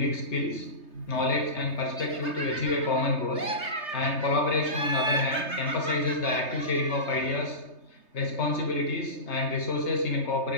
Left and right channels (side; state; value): right; late; 3.3 ms